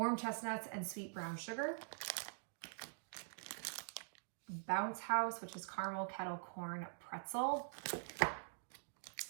chestnuts and sweet brown sugar. Bounce House, which is caramel kettle corn pretzel.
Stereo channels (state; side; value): silent; left; digital silence